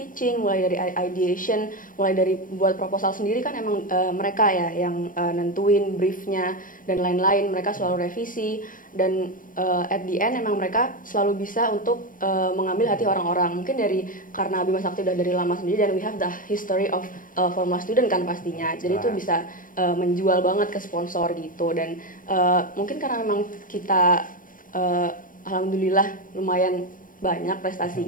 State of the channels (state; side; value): late; right; 0.40 ms